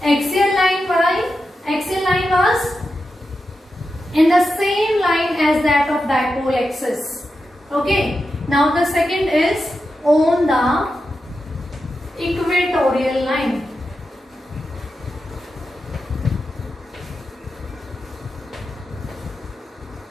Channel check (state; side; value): normal; both; correlation 0.89